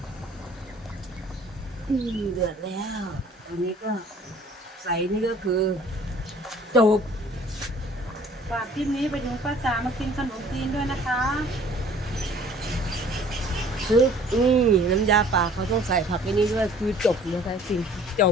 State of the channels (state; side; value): normal; both; correlation 0.52